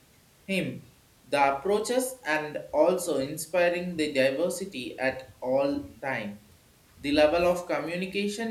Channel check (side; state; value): both; identical; correlation 1.00